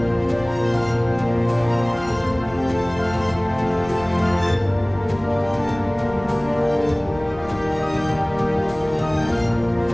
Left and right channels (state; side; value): noise; left; rumble, 20 dB below the sound